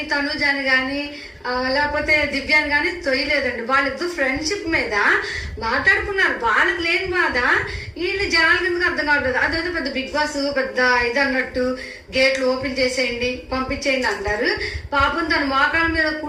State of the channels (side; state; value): both; identical; correlation 1.00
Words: తనుజాని కానీ లేకపోతే దివ్యాన్ని కానీ తొయ్యలేదండి. వాళ్ళిద్దరు ఫ్రెండ్షిప్ మీద మాట్లాడుకున్నారు. వాళ్ళకి లేని బాధ వీళ్ళు జనాల కిందకి అర్థం కావట్లేదు. అదేదో పెద్ద బిగ్ బాస్ పెద్ద ఇది అన్నట్టు గేట్లు ఓపెన్ చేసేయండి పంపించేయండి అంటారు. పాపం తన మోకాళ్ళ మీద